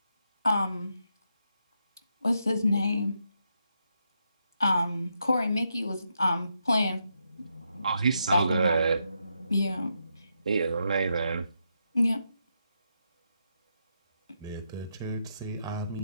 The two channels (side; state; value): both; inverted; correlation -0.82